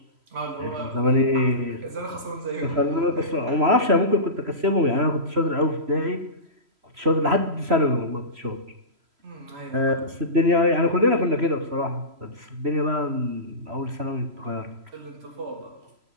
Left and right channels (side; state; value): left; late; 3.0 ms